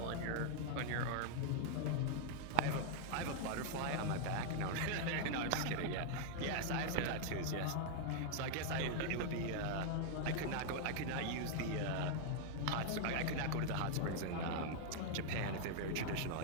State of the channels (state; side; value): different; both; correlation 0.00